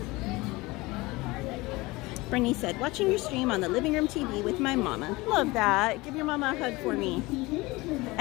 Brittany said, watching your stream on the living room TV with my mama. Love that. Give your mama a hug for me.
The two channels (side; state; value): right; quieter; 21.9 dB